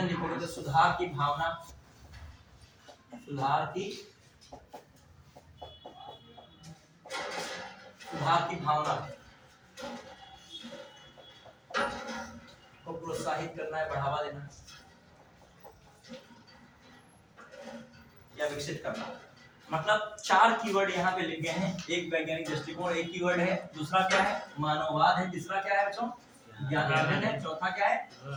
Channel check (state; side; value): identical; both; correlation 1.00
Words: लिखोगे तो सुधार की भावना, सुधार की भावना को प्रोत्साहित करना है, बढ़ावा देना या विकसित करना। मतलब 4 कीवर्ड यहाँ पे लिखे हैं, एक वैज्ञानिक दृष्टिकोण, एक कीवर्ड है, दूसरा क्या है मानववाद है, तीसरा क्या है बच्चों ज्ञानार्जन है, चौथा क्या है